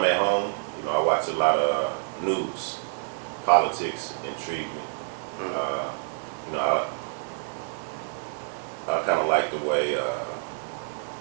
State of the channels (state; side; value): silent; left; digital silence